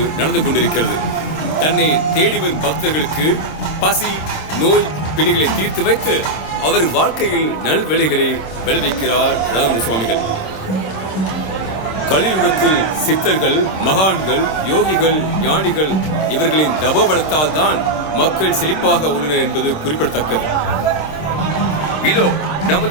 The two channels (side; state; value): right; late; 26 ms